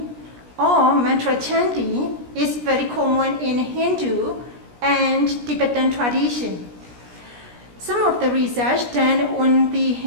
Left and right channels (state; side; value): late; left; 17 ms